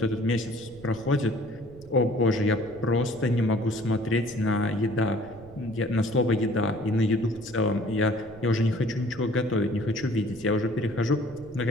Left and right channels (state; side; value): noise; right; rumble, 19 dB below the sound